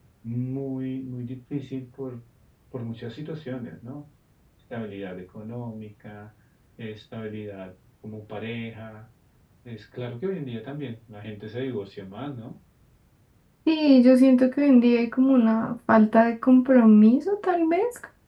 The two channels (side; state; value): both; identical; correlation 1.00